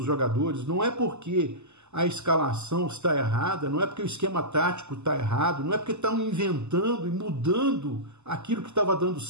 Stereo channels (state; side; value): late; left; 0.83 ms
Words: jogadores. Não é porque a escalação está errada, não é porque o esquema tático está errado, não é porque estão inventando e mudando aquilo que estava dando